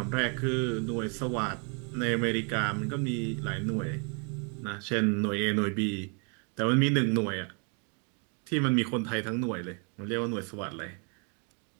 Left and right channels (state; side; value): quieter; left; 37.8 dB